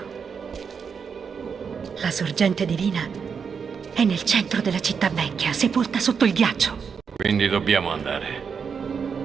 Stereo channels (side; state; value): left; quieter; 6.2 dB